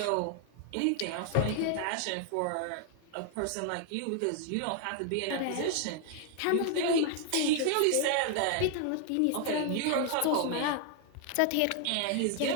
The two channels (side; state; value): both; different; correlation 0.00